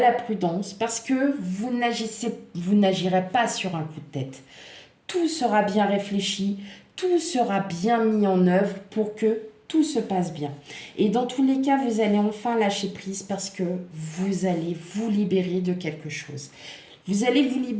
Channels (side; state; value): both; identical; correlation 1.00